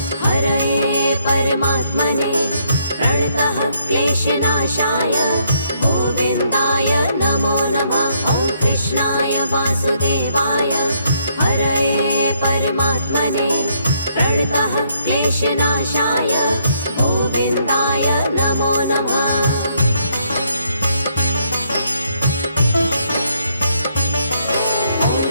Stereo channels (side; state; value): both; inverted; correlation -0.72